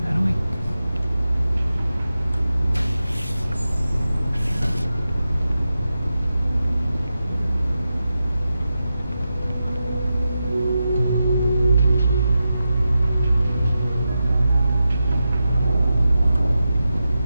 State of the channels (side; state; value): both; inverted; correlation -0.90